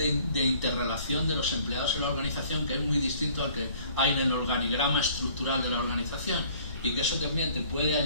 interrelación de los empleados en la organización, que es muy distinto al que hay en el organigrama estructural de la organización, y que eso también te puede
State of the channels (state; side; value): inverted; both; correlation -0.55